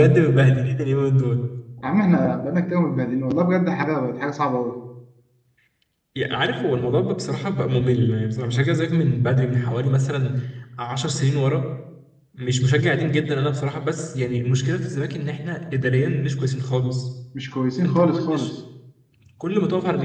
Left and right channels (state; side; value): identical; both; correlation 1.00